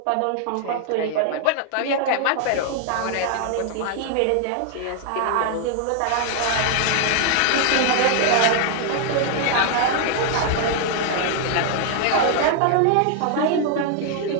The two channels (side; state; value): both; different; correlation 0.00